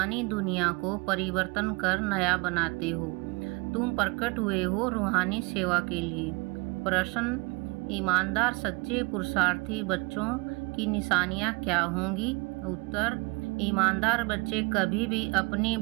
दुनिया को परिवर्तन कर नया बनाते हो। तुम प्रकट हुए हो रूहानी सेवा के लिए। प्रश्न, ईमानदार सच्चे पुरुषार्थी बच्चों की निशानियां क्या होंगी? उत्तर, ईमानदार बच्चे कभी भी अपनी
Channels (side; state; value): left; quieter; 27.8 dB